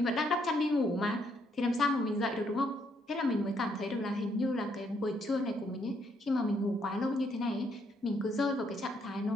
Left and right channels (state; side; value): normal; both; correlation 0.72